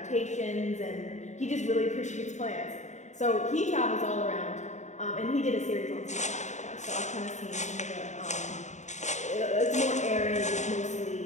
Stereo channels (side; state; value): right; late; 0.34 ms